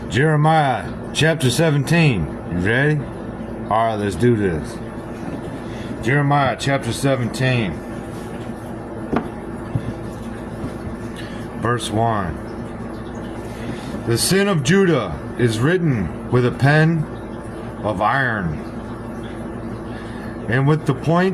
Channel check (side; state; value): both; identical; correlation 1.00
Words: Jeremiah chapter 17. You ready? Alright, let's do this. Jeremiah chapter 17. Verse 1. The sin of Judah is written with a pen of iron, and with the